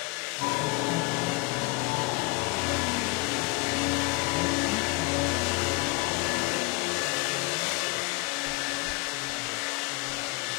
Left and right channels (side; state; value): right; quieter; 27.1 dB